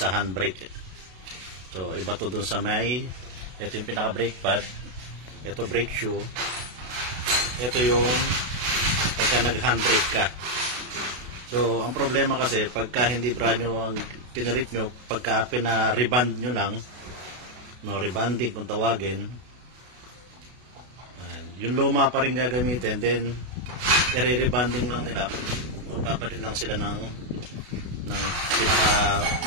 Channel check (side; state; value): left; late; 32 ms